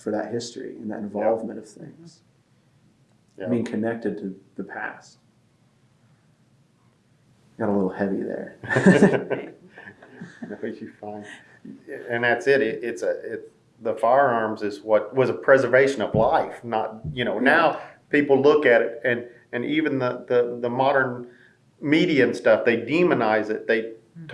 for that history and that involvement of things. Being connected to the past. Got a little heavy there. No, you're fine. And that's it. It's the firearms is what was a preservation of life. Not now people look at it and even the modern media and stuff, they demonize it. They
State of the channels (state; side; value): identical; both; correlation 1.00